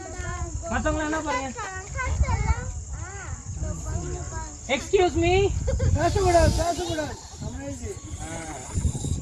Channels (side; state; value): both; identical; correlation 1.00